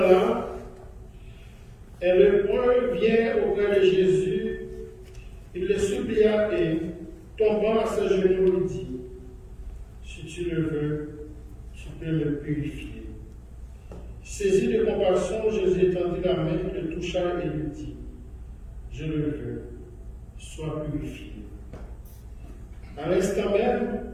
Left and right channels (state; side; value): identical; both; correlation 1.00